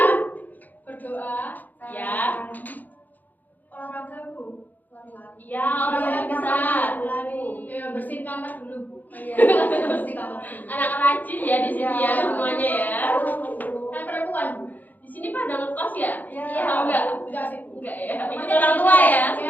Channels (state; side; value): late; right; 0.083 ms